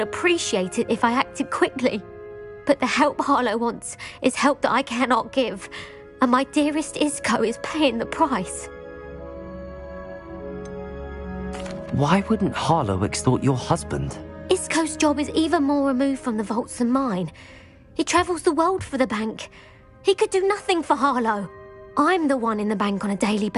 appreciate it if I acted quickly. But the help Harlow wants is help that I cannot give, and my dearest Isco is paying the price. Why wouldn't Harlow extort your husband? Isco's job is even more removed from the vaults than mine. He travels the world for the bank. He could do nothing for Harlow. I'm the one in the bank on a daily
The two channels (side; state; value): both; identical; correlation 1.00